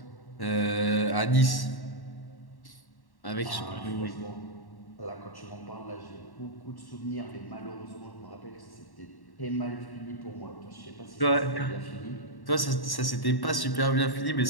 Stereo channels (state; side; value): late; right; 1.1 ms